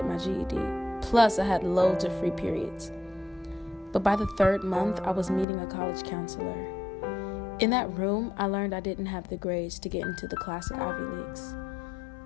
my GED. Plus, I had loads of free periods. But by the third month, I was meeting a college counselor. In that room, I learned I didn't have the grades to get into the classic Ivy Leagues.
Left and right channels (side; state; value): right; drops out; at 5.5 s